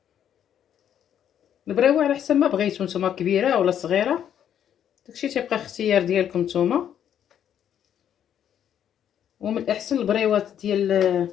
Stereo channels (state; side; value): quieter; right; 9.6 dB